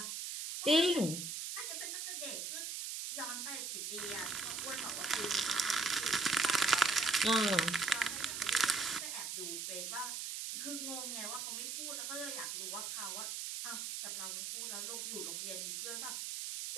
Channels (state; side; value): noise; right; hiss, 4 dB below the sound